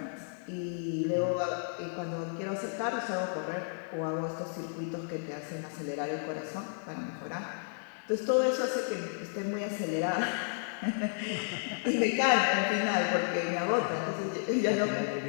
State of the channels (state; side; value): silent; right; digital silence